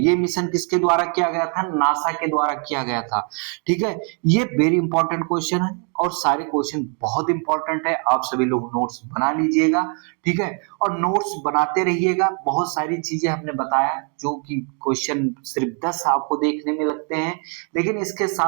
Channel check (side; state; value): left; quieter; 39.4 dB